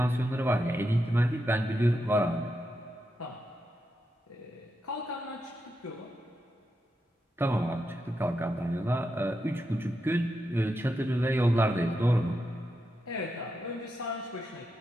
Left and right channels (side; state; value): both; normal; correlation 0.86